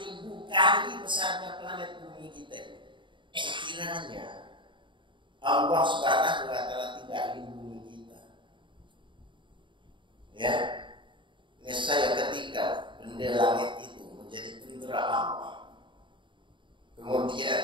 kali besarnya planet bumi kita. Sekiranya Allah Subhanahu wa taala tidak lindungi kita, ya, nescaya ketika benda langit itu menjadi tentara Allah,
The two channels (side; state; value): left; late; 0.23 ms